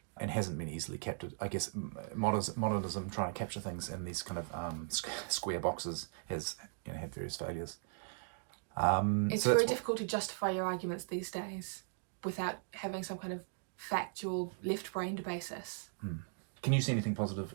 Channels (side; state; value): left; silent; digital silence